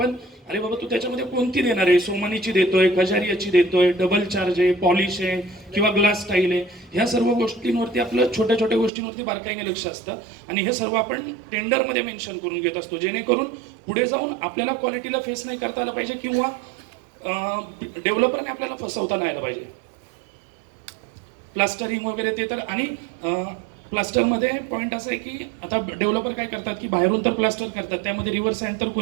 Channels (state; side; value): drops out; left; at 8.9 s